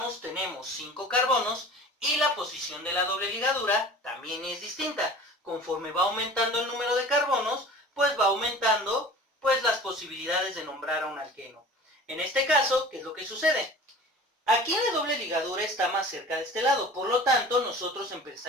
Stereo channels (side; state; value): both; normal; correlation 0.42